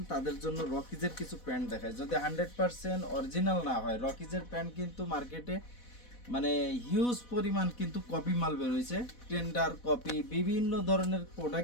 তাদের জন্য রকিজের কিছু প্যান্ট দেখায়। যদি 100% অরিজিনাল না হয়, রকিজের প্যান্ট কিন্তু মার্কেটে মানে হিউজ পরিমাণ কিন্তু কপি মাল বের হয়েছে, টেন্ডার কপি, বিভিন্ন ধরনের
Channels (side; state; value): right; late; 4.1 ms